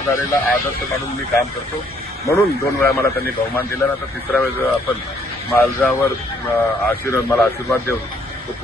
आदर्श मानून मी काम करतो। म्हणून 2 वेळा मला त्यांनी बहुमान दिला, आता 3ऱ्या वेळेस आपण माझ्यावर मला आशीर्वाद देऊन तो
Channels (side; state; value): both; normal; correlation 0.66